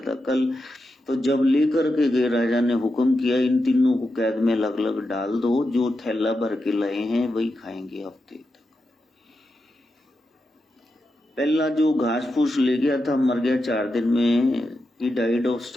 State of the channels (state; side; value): normal; both; correlation 0.88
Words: कल। तो जब लेकर के गए, राजा ने हुक्म किया इन तीनों को कैद में अलग अलग डाल दो, जो थैला भर के लाए हैं वही खाएंगे हफ्ते तक। पहला जो घास फूस ले गया था मर गया 4 दिन में, ही डाइड ऑफ